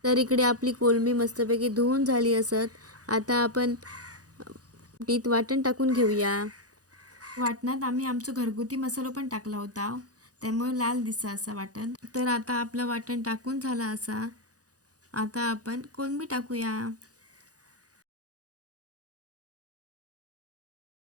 तर इकडे आपली कोलंबी मस्तपैकी धुवून झाली असत. आता आपण तीत वाटण टाकून घेऊया. वाटणात आम्ही आमचं घरगुती मसाला पण टाकला होता, त्यामुळे लाल दिसा असा वाटण. तर आता आपलं वाटण टाकून झाला असा. आता आपण कोलंबी टाकूया.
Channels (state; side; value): late; left; 0.67 ms